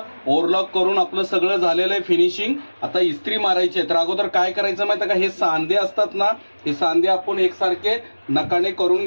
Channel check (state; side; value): inverted; both; correlation -1.00